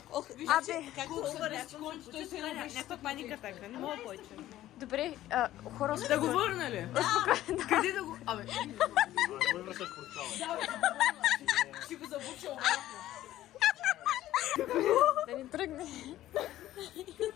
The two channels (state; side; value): quieter; right; 14.0 dB